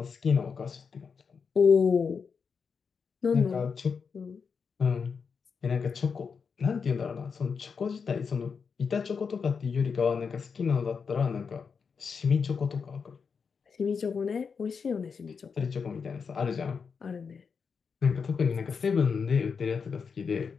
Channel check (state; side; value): quieter; right; 5.8 dB